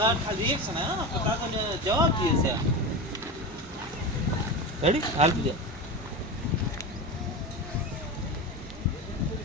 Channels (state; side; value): normal; both; correlation 0.23